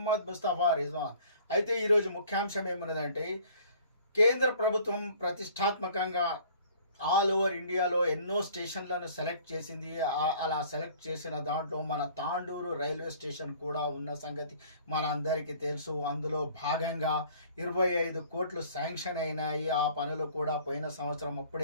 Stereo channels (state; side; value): inverted; both; correlation -0.53